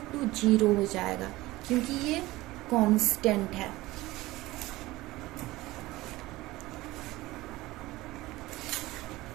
to 0 हो जाएगा, क्योंकि ये कांस्टेंट है।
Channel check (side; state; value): left; quieter; 18.8 dB